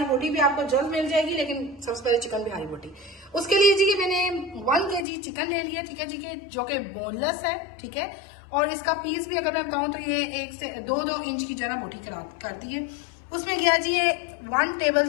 बोटी भी आपको जल्द मिल जाएगी, लेकिन सबसे पहले चिकन बिहारी बोटी। उसके लिए जी मैंने 1 kg चिकन ले लिया, ठीक है जी, के जो कि बोनलेस है, ठीक है। और इसका पीस भी अगर मैं बताऊं तो ये 1 से 2 इंच की जरा बोटी करती है। उसमें गया जी ये 1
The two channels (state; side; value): drops out; right; at 5.1 s